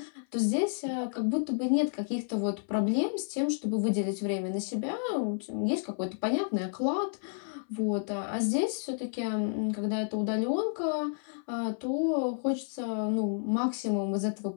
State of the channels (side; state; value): right; silent; 57 dB below the other